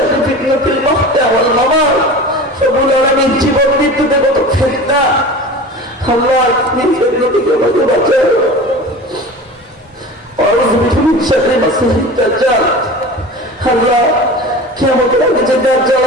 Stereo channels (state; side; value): normal; both; correlation 0.35